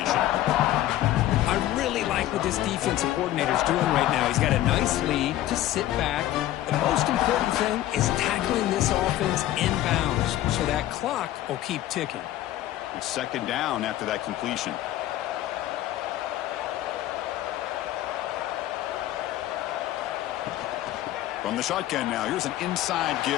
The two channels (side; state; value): right; quieter; 14.0 dB